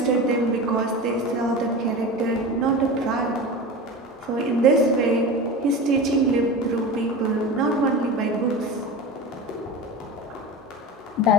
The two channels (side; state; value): both; normal; correlation 0.30